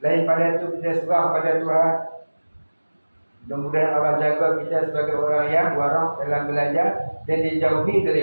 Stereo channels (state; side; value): inverted; both; correlation -1.00